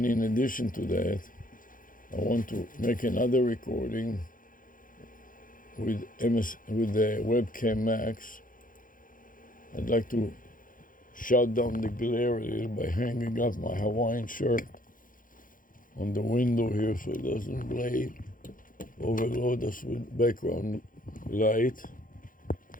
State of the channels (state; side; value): late; right; 0.40 ms